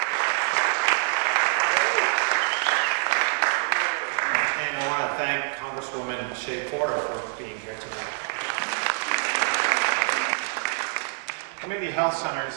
And I want to thank Congresswoman Shea-Porter for being here tonight. Community health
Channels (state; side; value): silent; left; 61 dB below the other